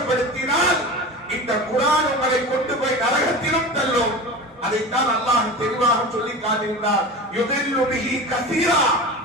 இந்த குர்ஆன் உங்களை கொண்டு போய் நரகத்திலும் தள்ளும். அதைத்தான் அல்லாஹ் தெளிவாக சொல்லி காட்டுகிறார். யுதில்லு பிஹி கஸீரா.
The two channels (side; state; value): both; normal; correlation 0.31